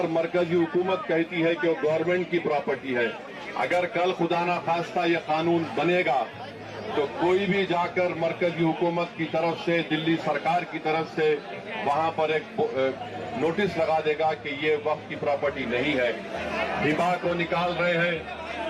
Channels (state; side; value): identical; both; correlation 1.00